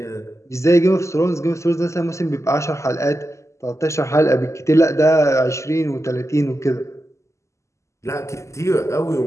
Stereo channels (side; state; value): right; late; 0.14 ms